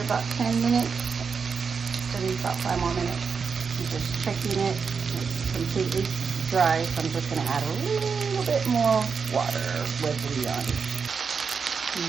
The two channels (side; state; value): left; quieter; 5.8 dB